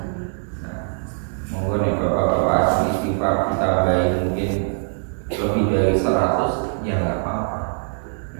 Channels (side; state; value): left; silent; 61 dB below the other